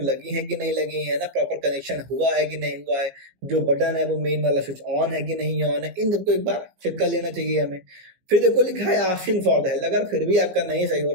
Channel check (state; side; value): late; left; 17 ms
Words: लगी है कि नहीं लगी है ना, प्रॉपर कनेक्शन हुआ है कि नहीं हुआ है, जो बटन है वो मेन वाला स्विच ऑन है कि नहीं ऑन है, इन सबको एक बार चेक कर लेना चाहिए हमें। फिर देखो लिखा है आस्किंग फॉर द हेल्प, अगर फिर भी आपका नहीं सही हो